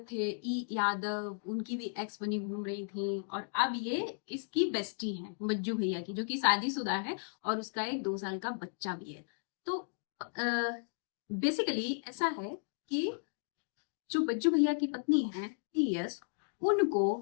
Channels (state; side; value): silent; right; digital silence